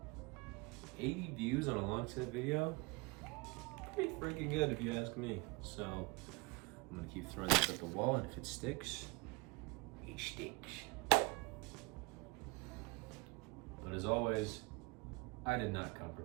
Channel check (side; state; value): left; quieter; 26.8 dB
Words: 80 views on a long set video, pretty freaking good if you ask me. So I'm gonna keep throwing this at the wall, and if it sticks, it sticks. But as always, I did not come